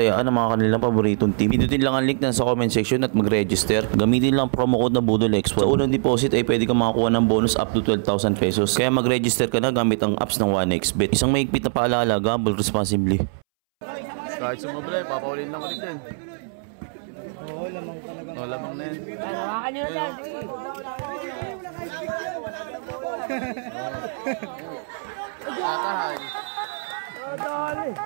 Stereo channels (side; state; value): left; silent; 63 dB below the other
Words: ang mga kanilang paboritong team, pindutin lang ang link na sa comment section at mag-register. Gamitin lang promo code na BUDOLXPOD. Sa unang deposit ay pwede kang makakuha ng bonus up to 12,000 pesos. Kaya mag-register ka na gamit ang apps ng 1xBet. Isang mahigpit na paalala, gamble responsibly. Kahit sumabla, papaulin lang ulit yan. Oo, lamang talaga. O, lamang na yan. Ay, hawakan nyo na dyan. Kakahay.